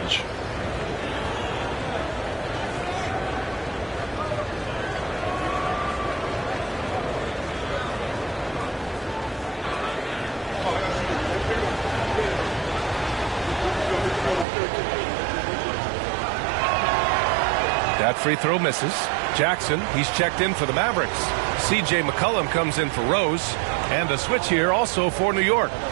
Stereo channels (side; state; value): left; drops out; at 14.5 s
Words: That free throw misses. Jackson, he's checked in for the Mavericks. C.J. McCollum comes in for Rose. And a switch here also for New York.